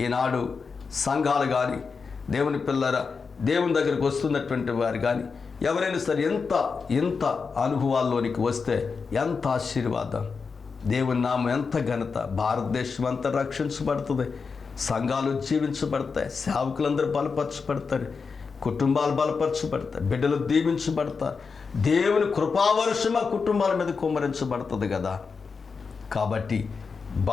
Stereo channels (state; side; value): quieter; right; 5.1 dB